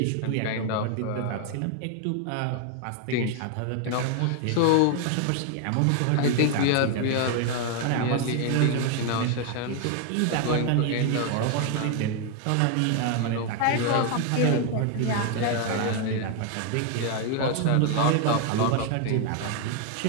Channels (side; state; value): both; different; correlation 0.00